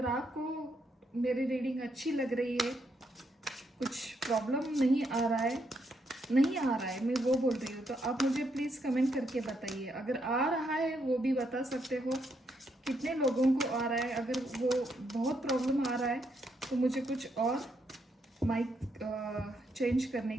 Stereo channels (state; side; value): normal; both; correlation 0.77